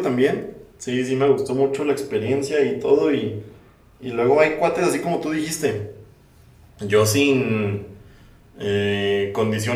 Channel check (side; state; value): both; identical; correlation 1.00